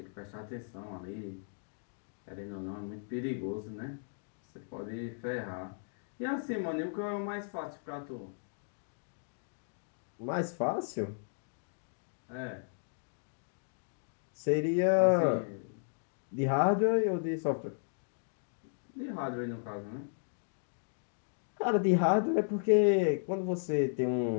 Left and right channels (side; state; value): right; silent; digital silence